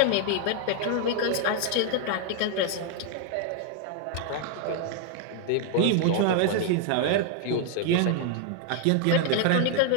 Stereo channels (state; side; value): different; both; correlation 0.00